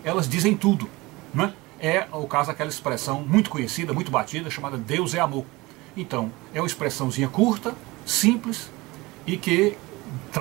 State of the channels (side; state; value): left; quieter; 22.0 dB